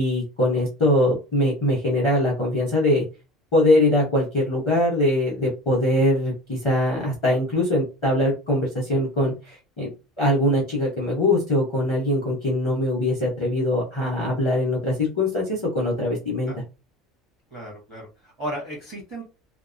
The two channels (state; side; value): normal; both; correlation 0.36